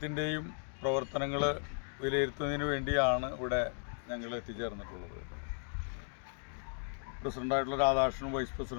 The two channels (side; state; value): right; silent; 54 dB below the other